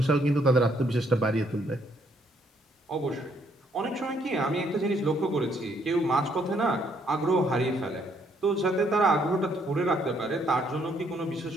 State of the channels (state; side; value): normal; both; correlation 0.69